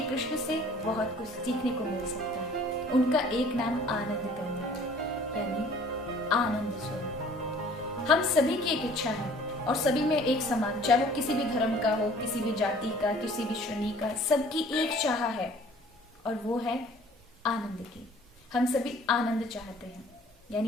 कृष्ण से बहुत कुछ सीखने को मिल सकता है। उनका एक नाम आनंद करना है, यानी आनंद स्वरूप। हम सभी की एक इच्छा है और सभी में एक समान, चाहे वो किसी भी धर्म का हो, किसी भी जाति का, किसी भी श्रेणी का, सबकी एक चाह है और वो है आनंद की। हम सभी आनंद चाहते हैं,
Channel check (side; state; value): both; normal; correlation 0.52